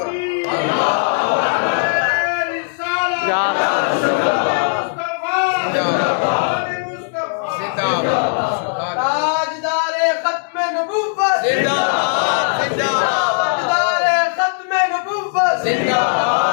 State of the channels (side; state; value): right; silent; digital silence